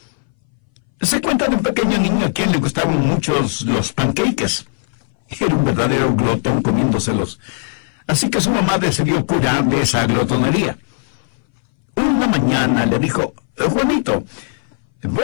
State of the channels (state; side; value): silent; right; 62 dB below the other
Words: Se cuenta de un pequeño niño a quien le gustaban muchos los pancakes. Era un verdadero glotón comiéndoselos. Así que su mamá decidió curarle esa glotonería. Una mañana le dijo: Juanito,